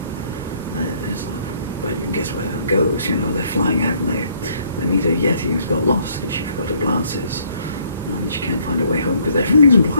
well, you can guess where that goes, you know, they're flying out and they meet a Yeti who's got lost because she forgot her glasses. And she can't find her way home because everything's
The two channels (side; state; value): both; inverted; correlation -0.64